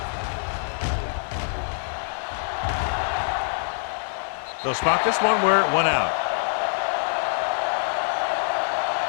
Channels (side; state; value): right; silent; 62 dB below the other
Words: They'll spot this one where it went out.